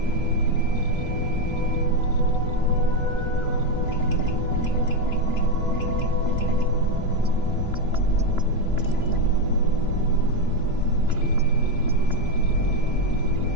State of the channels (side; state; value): right; late; 2.9 ms